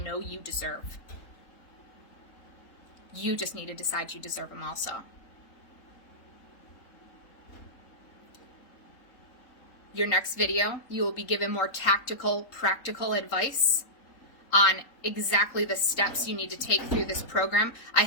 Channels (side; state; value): right; late; 3.9 ms